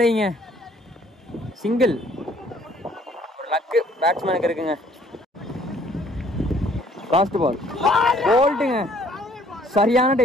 சிங்கிள். ஒரு லக்கு பேட்ஸ்மேனுக்கு இருக்குங்க. லாஸ்ட் பால் போல்ட்டுங்க, சரியான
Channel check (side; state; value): both; normal; correlation 0.60